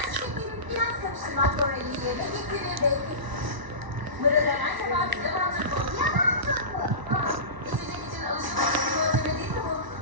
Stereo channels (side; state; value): left; late; 1.0 ms